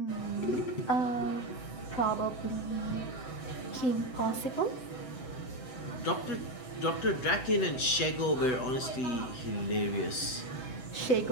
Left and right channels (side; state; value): right; late; 7.8 ms